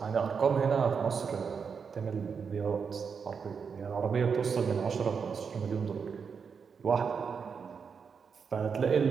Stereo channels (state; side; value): quieter; left; 6.1 dB